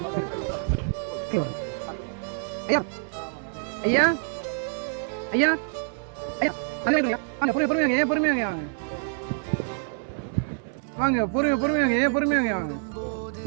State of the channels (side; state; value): left; silent; digital silence